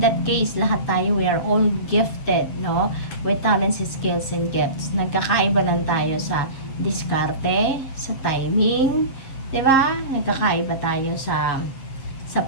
that case, lahat tayo, we are all gifted, no? With talents, skills, and gifts. Nagkakaiba lang tayo sa diskarte, sa timing, di ba? Nagkakaiba tayo sa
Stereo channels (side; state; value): right; late; 7.5 ms